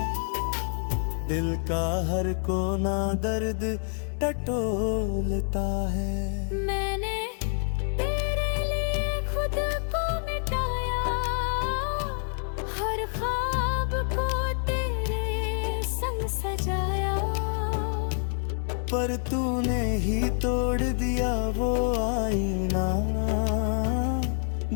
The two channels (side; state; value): right; silent; digital silence